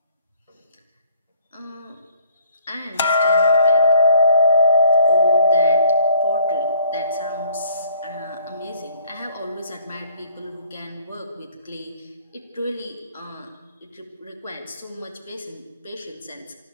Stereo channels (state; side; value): inverted; both; correlation -0.58